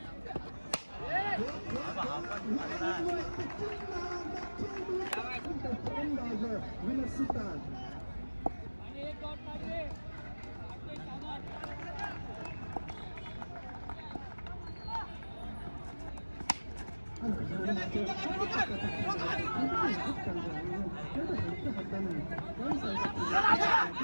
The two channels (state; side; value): inverted; both; correlation -1.00